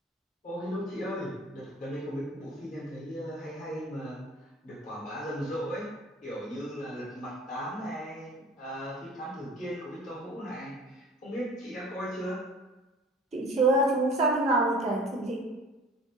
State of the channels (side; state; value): both; normal; correlation 0.45